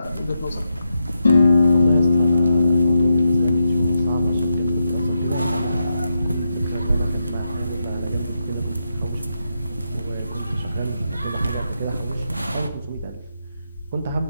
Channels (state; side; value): inverted; both; correlation -0.85